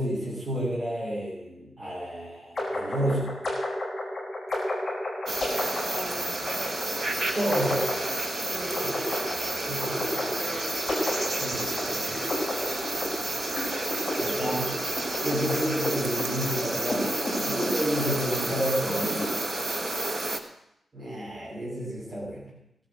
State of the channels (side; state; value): both; normal; correlation 0.85